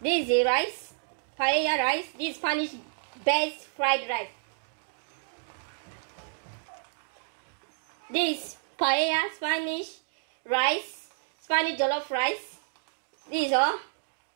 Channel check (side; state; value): left; silent; digital silence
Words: This is the rice, paella rice. This is Spanish best fried rice. This is paella, Spanish rice, Spanish jollof rice. This is all.